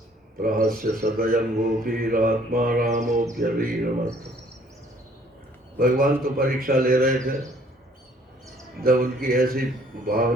प्रहस्य सदयं गोपीरात्मा रामोऽप्यवीरमत्। भगवान तो परीक्षा ले रहे थे, जब उनकी ऐसी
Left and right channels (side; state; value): both; normal; correlation 0.59